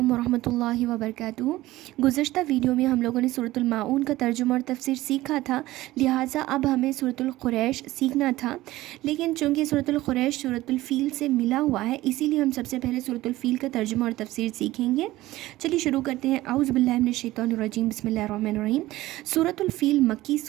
ورحمۃ اللہ وبرکاتہ۔ گزشتہ ویڈیو میں ہم لوگوں نے سورۃ الماعون کا ترجمہ اور تفسیر سیکھا تھا، لہٰذا اب ہمیں سورۃ القریش سیکھنا تھا، لیکن چونکہ سورۃ القریش سورۃ الفیل سے ملا ہوا ہے اسی لیے ہم سب سے پہلے سورۃ الفیل کا ترجمہ اور تفسیر سیکھیں گے۔ چلیے شروع کرتے ہیں۔ اعوذ باللہ من الشیطان الرجیم، بسم اللہ الرحمن الرحیم۔ سورۃ الفیل مکی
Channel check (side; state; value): left; quieter; 17.0 dB